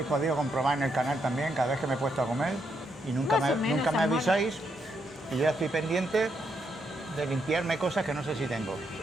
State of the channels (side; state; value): both; normal; correlation 0.78